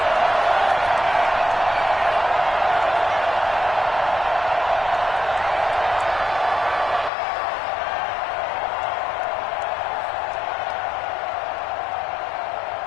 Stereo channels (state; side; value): drops out; right; at 7.1 s